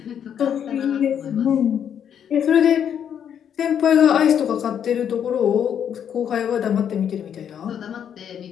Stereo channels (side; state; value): right; quieter; 8.7 dB